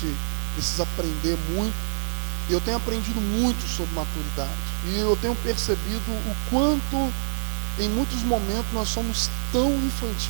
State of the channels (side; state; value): left; silent; 59 dB below the other